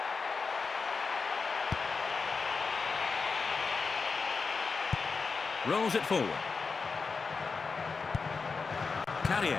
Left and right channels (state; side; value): quieter; right; 4.8 dB